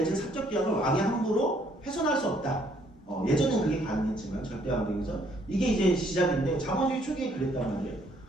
사적 계약을 왕이 함부로 훼손할 수 없다. 예전엔 그게 가능했지만 절대 왕정에서 이게 이제 시작인데 자본주의 초기에 그랬단 말이에요.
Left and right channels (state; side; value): normal; both; correlation 0.66